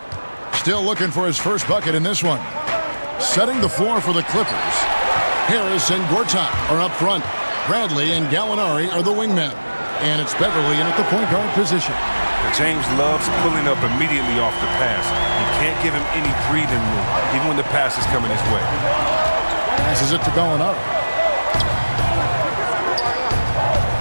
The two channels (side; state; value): both; inverted; correlation -1.00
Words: Still looking for his first bucket in this one. Setting the floor for the Clippers. Harris and Gortat are up front. Bradley and Gallinari are the wingmen. And it's Beverly in at the point guard position. James loves pulling up immediately off the pass. You can't give him any breathing room, even when the pass is coming his way. Passes it to Gallinari.